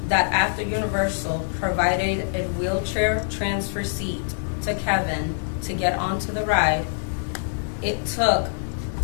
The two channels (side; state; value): right; silent; digital silence